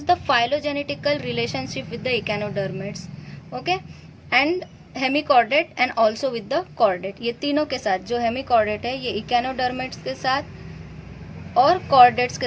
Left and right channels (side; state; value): both; identical; correlation 1.00